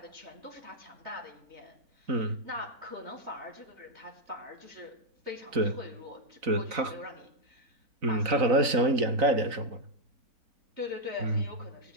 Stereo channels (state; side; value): late; left; 3.9 ms